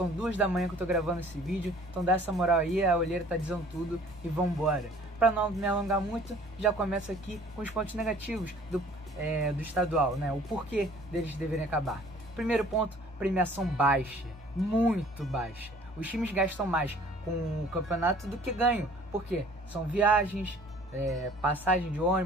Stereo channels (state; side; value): normal; both; correlation 0.52